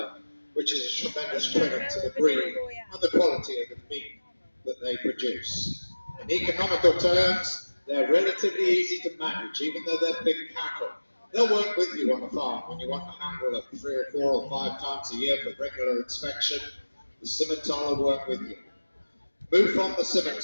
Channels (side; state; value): both; inverted; correlation -1.00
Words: which is a tremendous credit to the breed and the quality of the meat that they produce. In economical terms, they're relatively easy to manage, even though they're big cattle. They'll work with you on the farm when you want to handle it 3 or 4 or 5 times a year for regular inspection. The Scimitar will work with you. Move from the